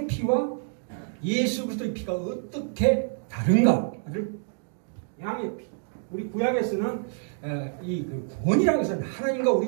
피와 예수 그리스도의 피가 어떻게 다른가를 양의 피. 우리 구약에서는 이 구원이라는 것은 하나님과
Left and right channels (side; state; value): left; silent; digital silence